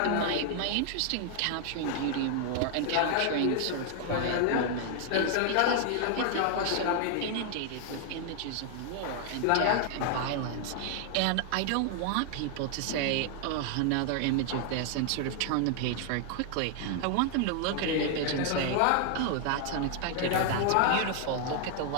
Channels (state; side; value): different; both; correlation 0.00